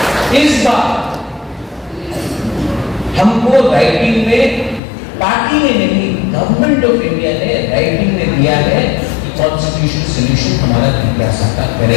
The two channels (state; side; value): drops out; right; at 4.8 s